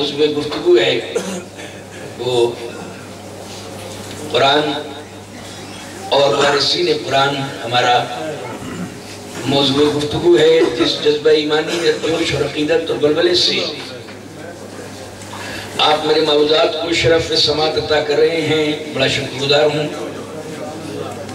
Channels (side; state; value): both; identical; correlation 1.00